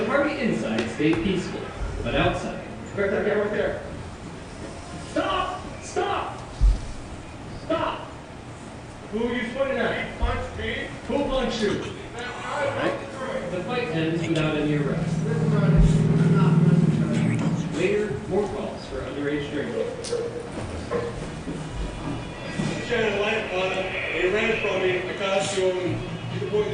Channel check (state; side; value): identical; both; correlation 1.00